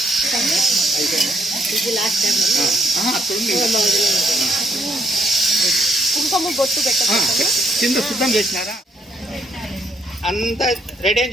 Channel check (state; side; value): normal; both; correlation 0.71